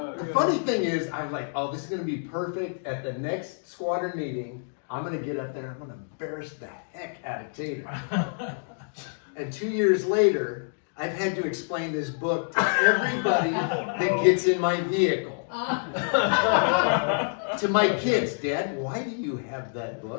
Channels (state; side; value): silent; right; digital silence